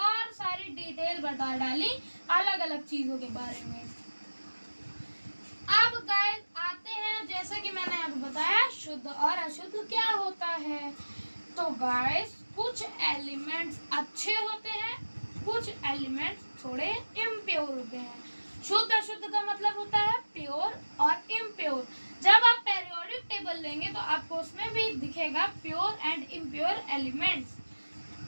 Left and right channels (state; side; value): inverted; both; correlation -1.00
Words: सारी डिटेल बता डाली अलग अलग चीजों के बारे में। अब गाइस आते हैं शुद्ध और अशुद्ध क्या होता है। तो गाइस कुछ एलिमेंट्स अच्छे होते हैं, कुछ एलिमेंट्स थोड़े इम्प्योर होते हैं। शुद्ध अशुद्ध का मतलब होता है प्योर और इम्प्योर। जब आप पेरियोडिक टेबल लेंगे तो आपको उसमें भी दिखेगा प्योर एंड इम्प्योर एलिमेंट्स।